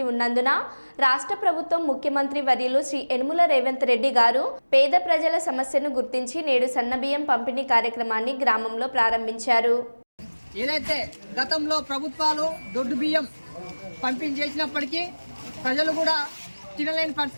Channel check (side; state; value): both; inverted; correlation -1.00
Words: ఉన్నందున రాష్ట్ర ప్రభుత్వం ముఖ్యమంత్రి వర్యులు శ్రీ యనుమల రేవంత్ రెడ్డి గారు పేద ప్రజల సమస్యను గుర్తించి నేడు సన్నబియ్యం పంపిణీ కార్యక్రమాన్ని గ్రామంలో ప్రారంభించారు. ఏదైతే గతంలో ప్రభుత్వాలు దొడ్డు బియ్యం పంపిణీ చేసినప్పటికీ ప్రజలు కూడా తినలేని